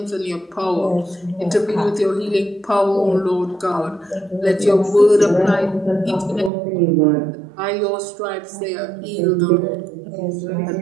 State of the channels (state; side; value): drops out; left; at 6.5 s